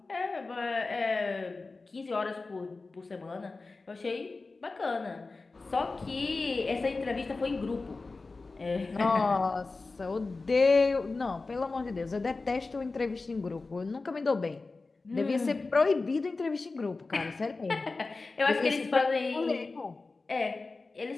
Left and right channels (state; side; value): quieter; right; 3.7 dB